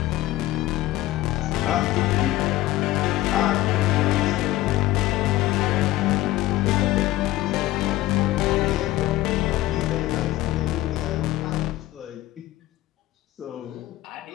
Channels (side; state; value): right; quieter; 16.2 dB